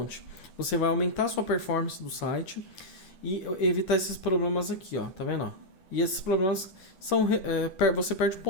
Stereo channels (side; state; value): right; late; 10 ms